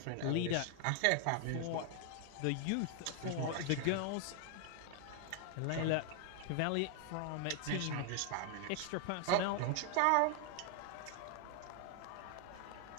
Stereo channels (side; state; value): both; different; correlation 0.00